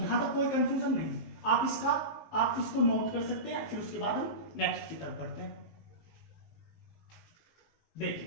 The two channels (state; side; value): late; right; 19 ms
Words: यहां तक कोई कंफ्यूजन नहीं। आप इसको नोट कर सकते हैं, फिर उसके बाद हम नेक्स्ट की तरफ बढ़ते हैं।